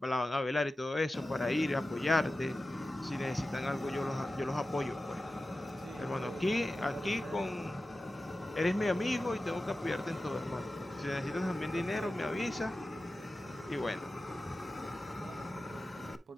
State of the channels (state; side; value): normal; both; correlation 0.94